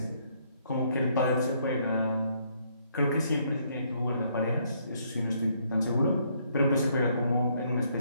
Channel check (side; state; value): both; inverted; correlation -0.70